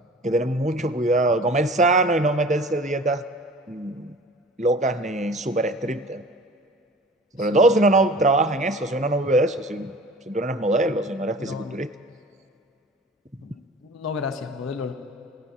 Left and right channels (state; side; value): normal; both; correlation 0.43